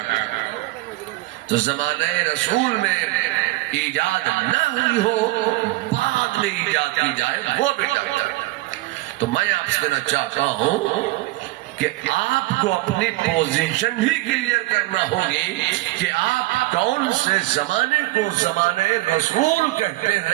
تو زمانہ رسول میں ایجاد نہ ہوئی ہو بعد میں ایجاد کی جائے وہ بدعت. تو میں آپ سے کہنا چاہتا ہوں کہ آپ کو اپنی پوزیشن ہی کلیئر کرنا ہوگی کہ آپ کون سے زمانے کو زمانے رسول کہتے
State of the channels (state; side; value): quieter; left; 19.4 dB